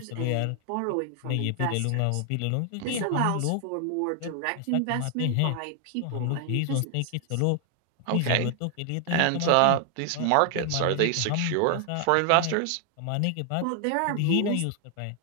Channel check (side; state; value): both; different; correlation 0.00